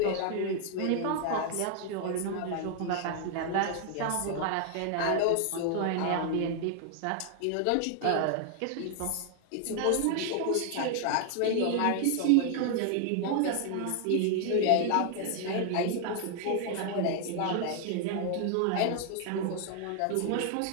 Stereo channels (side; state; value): both; different; correlation 0.00